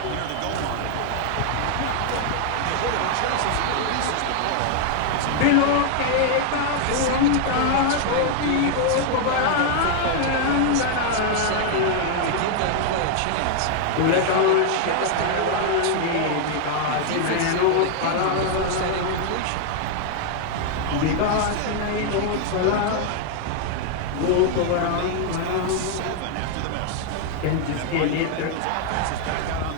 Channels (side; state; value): both; different; correlation 0.00